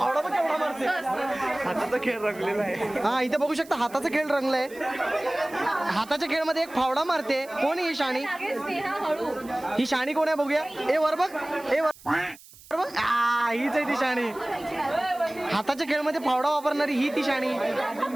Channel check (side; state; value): right; noise; hiss, 22 dB below the sound